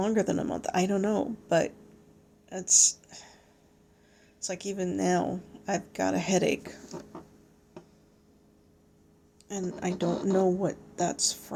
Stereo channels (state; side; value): identical; both; correlation 1.00